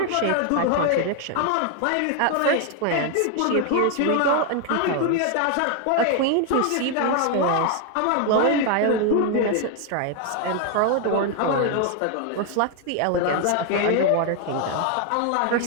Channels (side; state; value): both; different; correlation 0.00